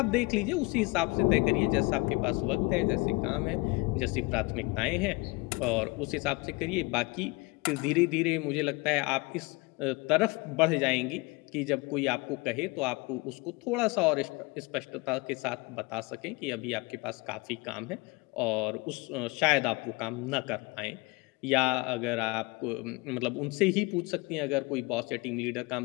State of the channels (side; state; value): right; quieter; 25.5 dB